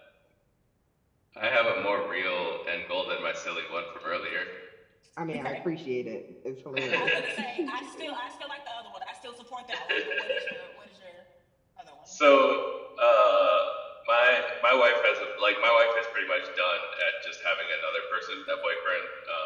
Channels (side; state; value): both; identical; correlation 1.00